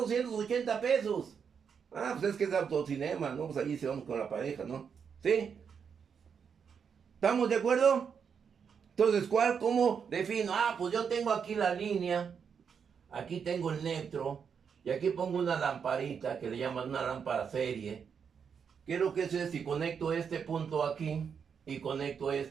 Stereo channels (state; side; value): quieter; left; 6.8 dB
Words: pesos. Ah, pues es que es autocinema, ¿no? Pues allí se vamos con la pareja, ¿no? ¿Sí? ¿Estamos de acuerdo? Entonces, ¿cómo defino? Ah, pues yo tengo aquí la línea, aquí tengo el neutro, y aquí pongo una lamparita que le llaman una lámpara serie. ¿Qué es lo que es? Si conecto este punto aquí y conecto